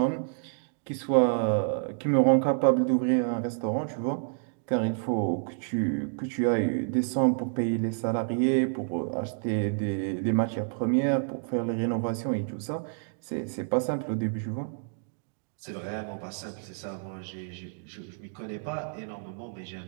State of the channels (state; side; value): silent; left; digital silence